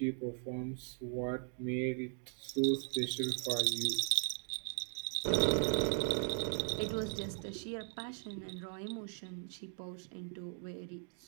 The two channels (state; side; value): silent; left; 52 dB below the other